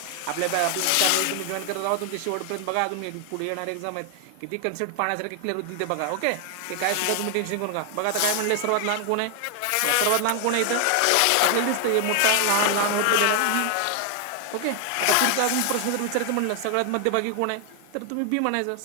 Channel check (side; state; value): both; different; correlation 0.00